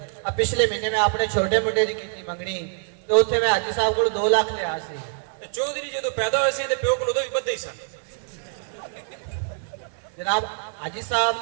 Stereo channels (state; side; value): silent; left; digital silence